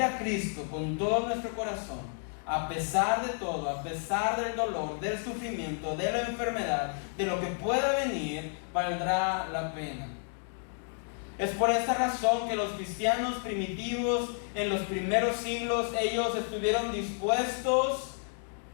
a Cristo con todo nuestro corazón, a pesar de todo, a pesar del dolor, del sufrimiento, de la enfermedad, de lo que pueda venir, valdrá la pena. Es por esta razón que los cristianos primitivos en los primeros siglos, ellos estuvieron dispuestos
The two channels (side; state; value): right; silent; 57 dB below the other